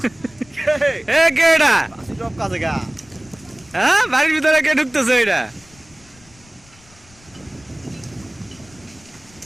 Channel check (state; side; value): noise; left; rumble, 27 dB below the sound